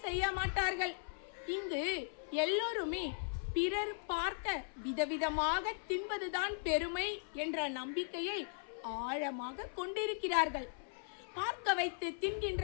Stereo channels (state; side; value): silent; right; 52 dB below the other